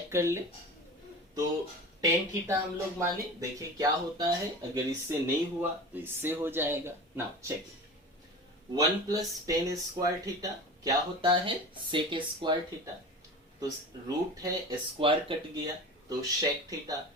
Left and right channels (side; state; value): both; normal; correlation 0.33